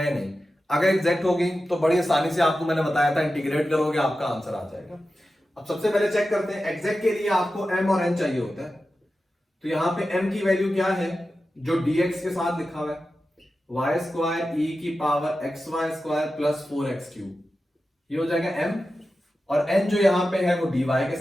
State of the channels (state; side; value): normal; both; correlation 0.93